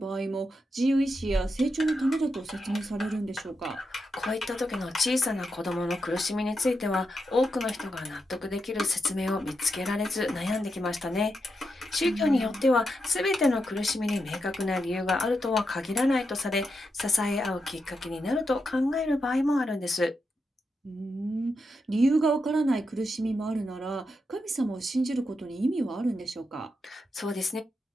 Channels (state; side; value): normal; both; correlation 0.85